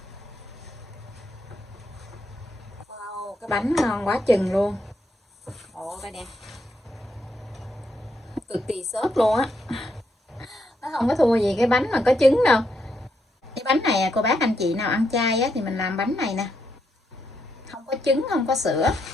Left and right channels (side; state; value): both; normal; correlation 0.79